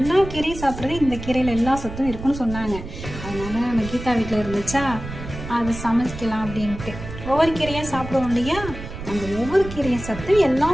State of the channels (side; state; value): right; noise; rumble, 10 dB below the sound